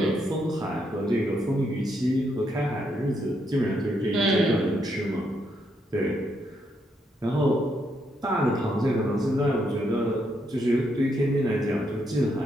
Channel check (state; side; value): normal; both; correlation 0.77